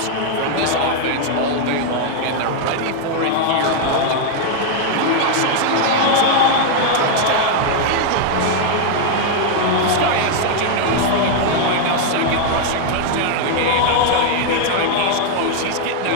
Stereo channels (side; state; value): both; different; correlation 0.00